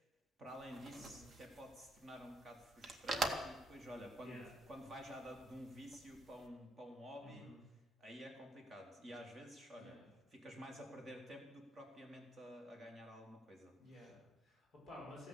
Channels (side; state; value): both; normal; correlation 0.74